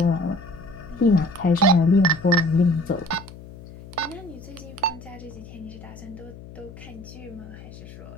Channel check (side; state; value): left; noise; hum, 16 dB below the sound